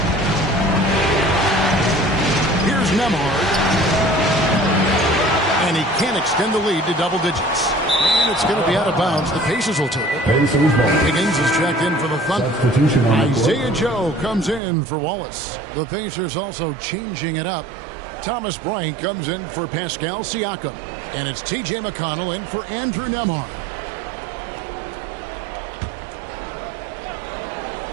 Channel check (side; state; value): left; drops out; at 14.6 s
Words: Here's Nembhard. And he can't extend the lead to double digits. And it's going to be out of bounds. The Pacers will take it. Higgins is checked in for the Thunder. Isaiah Joe comes in for Wallace. The Pacers also changing it up. Thomas Bryant comes in for Pascal Siakam. And it's T.J. McConnell in for Andrew Nembhard.